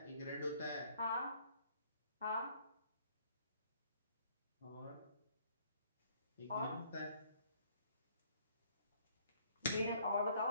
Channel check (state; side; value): inverted; both; correlation -0.62